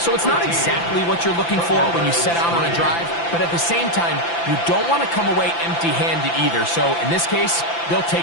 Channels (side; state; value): right; late; 5.9 ms